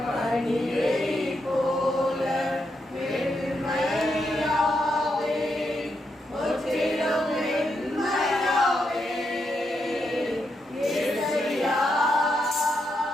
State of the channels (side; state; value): both; normal; correlation 0.82